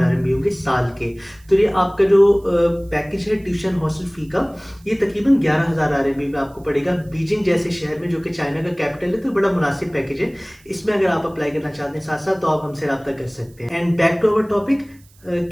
RMB होंगे साल के। तो ये आपका जो पैकेज है ट्यूशन हॉस्टल फ़ी का, ये तकरीबन 11,000 RMB में आपको पड़ेगा। बीजिंग जैसे शहर में, जो कि चाइना का कैपिटल है, तो बड़ा मुनासिब पैकेज है। इसमें अगर आप अप्लाई करना चाहते हैं साथ साथ, तो आप हमसे रब्ता कर सकते हैं। And back to our topic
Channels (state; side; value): noise; right; hiss, 29 dB below the sound